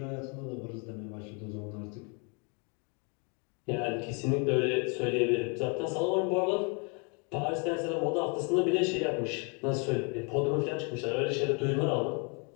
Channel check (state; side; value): quieter; right; 35.1 dB